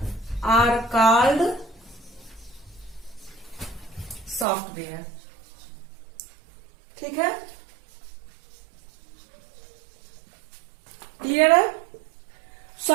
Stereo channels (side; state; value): left; drops out; at 4.5 s